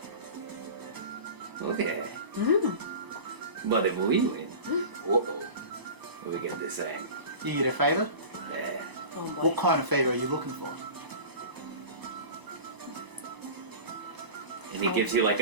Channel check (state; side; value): late; left; 1.0 ms